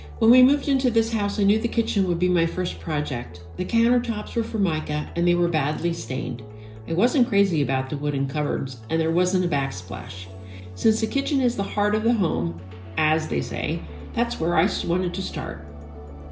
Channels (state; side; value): identical; both; correlation 1.00